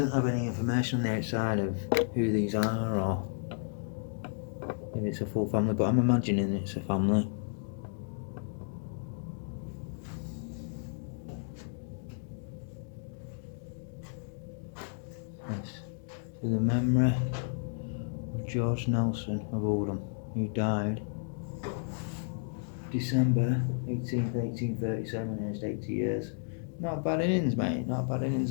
have any information on the outside of who these are or if it's a full family, but I'm imagining it's a family. Yes, to the memory of George Nelson of Oldham, who died December 18th, 1837, aged 80 years. Not bad innings, mate, not bad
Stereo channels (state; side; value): silent; right; digital silence